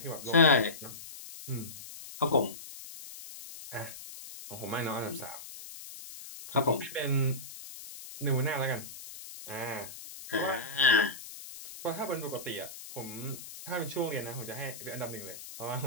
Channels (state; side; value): noise; left; hiss, 13 dB below the sound